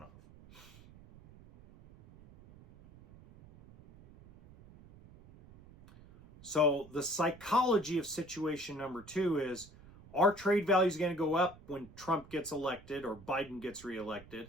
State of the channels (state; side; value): noise; right; rumble, 21 dB below the sound